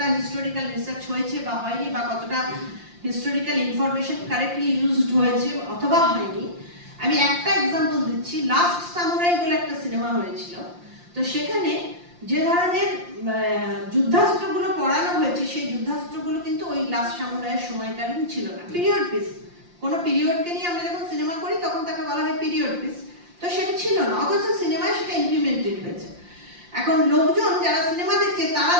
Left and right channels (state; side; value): late; left; 5.7 ms